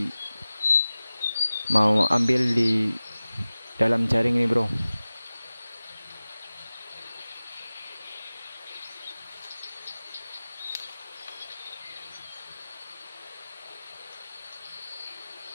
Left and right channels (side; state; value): both; inverted; correlation -0.96